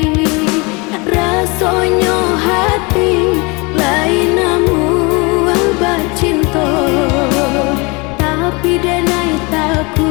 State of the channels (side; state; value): right; quieter; 27.9 dB